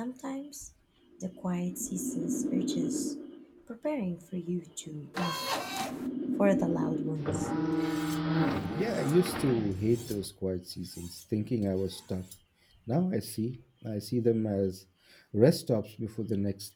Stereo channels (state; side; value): identical; both; correlation 1.00